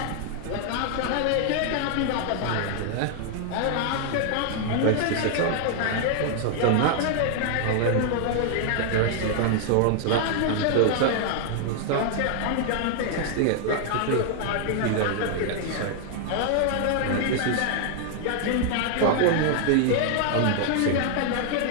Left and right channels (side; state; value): both; different; correlation 0.00